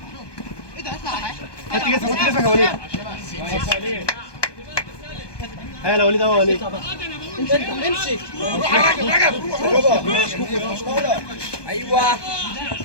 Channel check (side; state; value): right; late; 1.2 ms